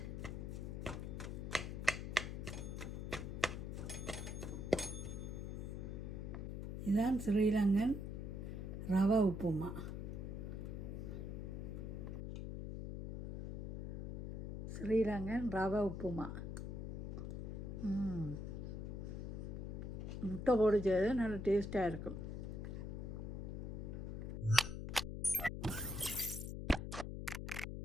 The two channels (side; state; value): left; noise; hum, 5 dB below the sound